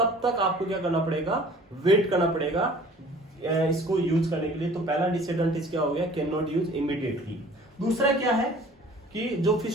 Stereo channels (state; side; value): normal; both; correlation 0.49